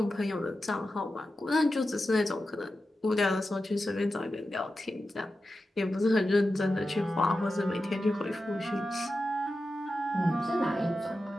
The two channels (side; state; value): both; normal; correlation 0.91